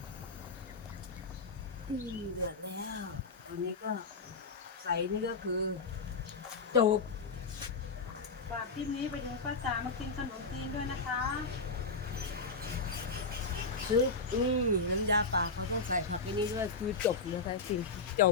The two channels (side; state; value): right; quieter; 4.1 dB